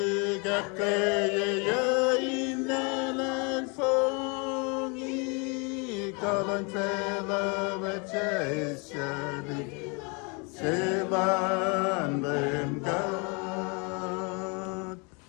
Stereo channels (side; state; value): right; quieter; 32.4 dB